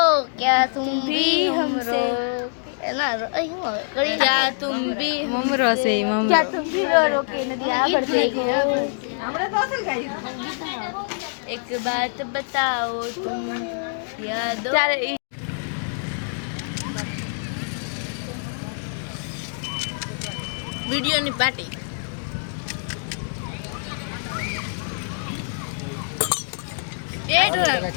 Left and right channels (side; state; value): right; silent; digital silence